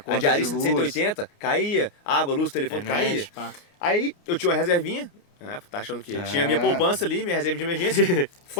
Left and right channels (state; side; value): late; right; 29 ms